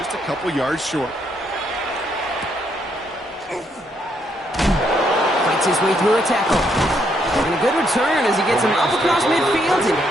a couple yards short. Fights his way through a tackle. And a good return as he gets him up across midfield and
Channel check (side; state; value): both; normal; correlation 0.74